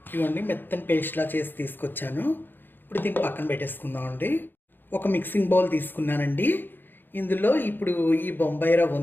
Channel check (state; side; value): late; right; 0.095 ms